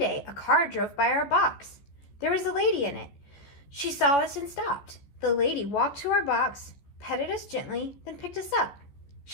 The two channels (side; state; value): right; late; 14 ms